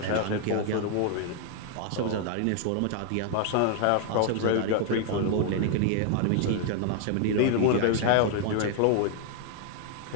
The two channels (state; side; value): different; both; correlation 0.00